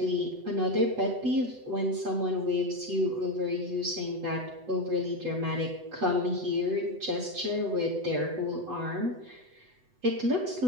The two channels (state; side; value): late; left; 8.0 ms